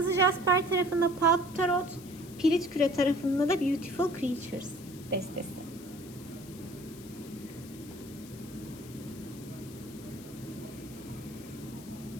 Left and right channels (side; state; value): left; noise; hiss, 18 dB below the sound